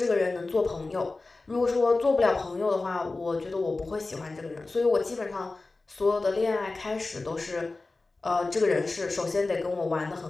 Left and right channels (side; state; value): right; quieter; 3.4 dB